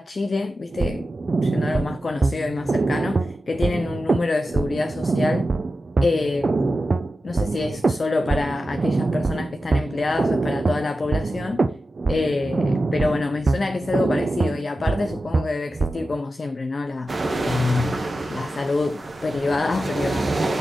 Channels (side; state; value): both; normal; correlation 0.92